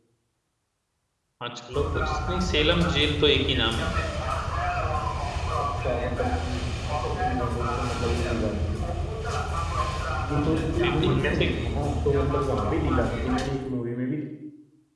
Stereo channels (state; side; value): identical; both; correlation 1.00